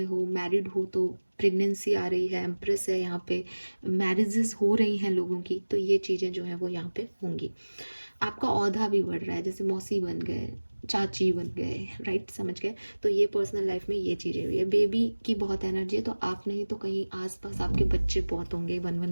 हो, मैरिड हो तो प्रेगनेंसी आ रही है, एम्प्रेस है यहाँ पे, मैरिजेस हो रही हैं लोगों की, तो ये चीज़ें जो है वो यहाँ पे होंगी। आपका औहदा भी बढ़ रहा है, जैसे मौसी बन गए, चाची बन गए, राइट, समझ गए। तो ये पर्सनल लाइफ में ये चीज़ें हुई है। बेबी की बहुत एनर्जी है, तो आप नहीं तो कहीं आसपास आपके बच्चे बहुत होंगे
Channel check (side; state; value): both; inverted; correlation -1.00